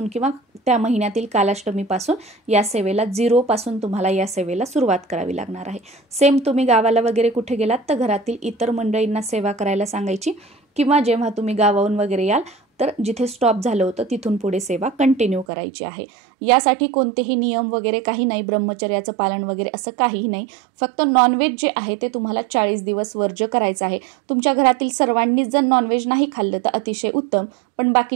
किंवा त्या महिन्यातील कालाष्टमीपासून या सेवेला 0 पासून तुम्हाला या सेवेला सुरुवात करावी लागणार आहे. सेम तुम्ही गावाला वगैरे कुठे गेलात तर घरातील इतर मंडळींना सेवा करायला सांगायची किंवा जेव्हा तुम्ही गावाहून वगैरे याल तर जिथे स्टॉप झालं होतं तिथून पुढे सेवा कंटिन्यू करायची आहे. यासाठी कोणतेही नियम वगैरे काही नाही, ब्रह्मचर्याचं पालन वगैरे असं काहीही नाही. फक्त नॉनव्हेज जे आहे ते तुम्हाला 40 दिवस वर्ज्य करायचं आहे. तुमच्या घरातील सर्वांनीच जर नॉनव्हेज नाही खाल्लं तर अतिशय उत्तम, पण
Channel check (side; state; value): left; drops out; at 15.5 s